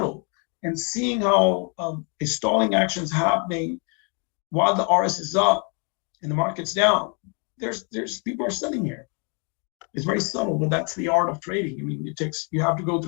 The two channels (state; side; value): quieter; right; 36.7 dB